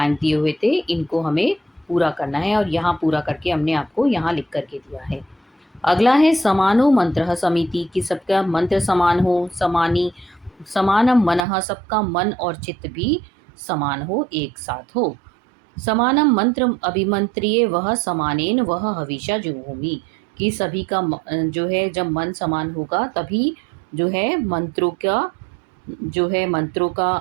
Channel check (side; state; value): left; drops out; at 11.4 s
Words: दिए हुए थे इनको हमें पूरा करना है, और यहाँ पूरा करके हमने आपको यहाँ लिख करके दिया है। अगला है समानो मंत्र समिति, कि सबका मंत्र समान हो, समानी समानम मनः, सबका मन और चित्त भी समान हो, एक साथ हो। समानम मंत्र अभिमंत्रिये वह समानेन वह हविषा जुहोमि, कि सभी का जो है जब मन समान होगा तभी जो है मंत्रों का, जो है मंत्रों